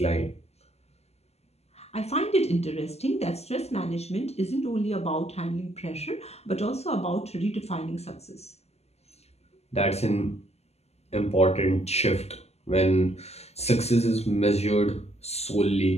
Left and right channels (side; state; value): right; late; 0.30 ms